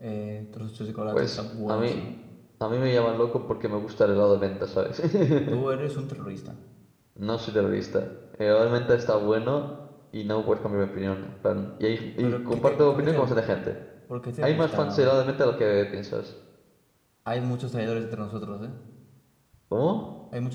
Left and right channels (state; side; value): identical; both; correlation 1.00